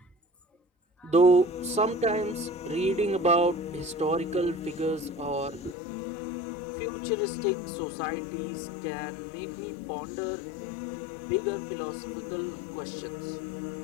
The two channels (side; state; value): right; drops out; at 5.8 s